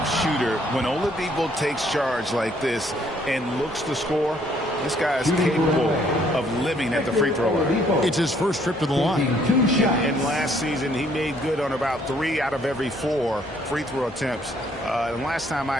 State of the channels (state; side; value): normal; both; correlation 0.65